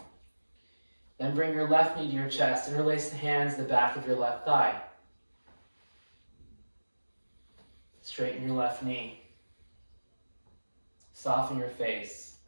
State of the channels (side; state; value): both; inverted; correlation -1.00